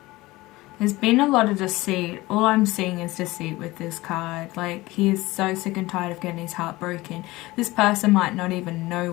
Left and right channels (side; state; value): right; quieter; 19.7 dB